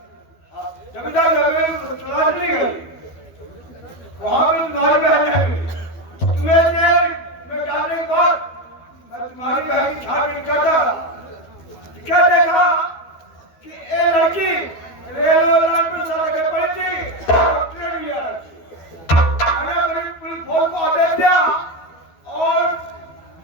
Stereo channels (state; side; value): late; right; 12 ms